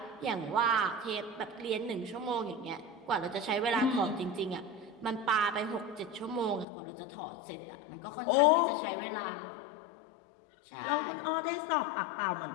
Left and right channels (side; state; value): right; drops out; at 6.7 s